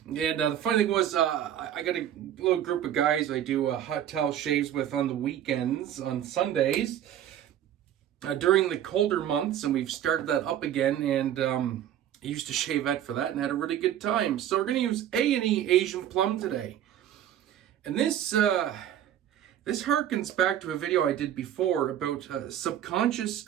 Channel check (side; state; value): left; quieter; 10.9 dB